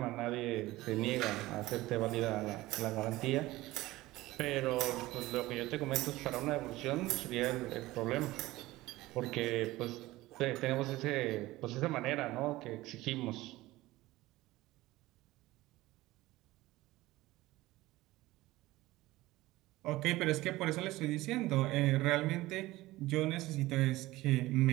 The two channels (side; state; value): left; quieter; 18.2 dB